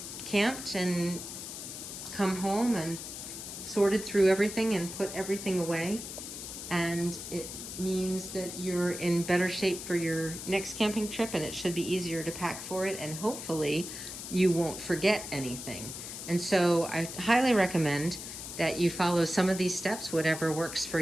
camped and come home and sorted through everything and put everything away. And it means that you're in better shape for your next camping trip, and it should be easier to pack for it, and hopefully you won't forget anything. And so I highly recommend that you follow some of these steps, whatever works for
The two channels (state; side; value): noise; left; hiss, 9 dB below the sound